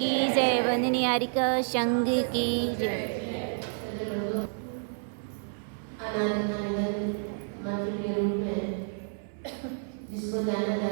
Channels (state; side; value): silent; left; 56 dB below the other